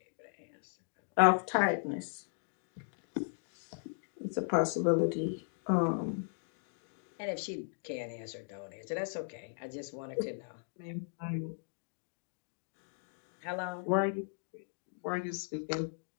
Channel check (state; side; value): silent; right; digital silence